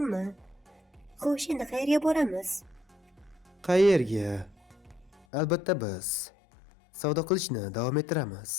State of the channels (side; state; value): right; drops out; at 5.2 s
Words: Xo'sh, endi qayerga boramiz? Qayerga? Albatta biz savdo qilishni davom ettiramiz.